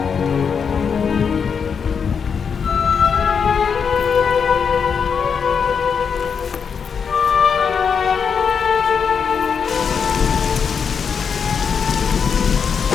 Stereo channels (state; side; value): quieter; right; 6.4 dB